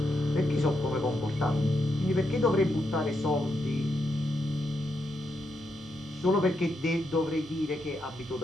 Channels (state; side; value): normal; both; correlation 0.82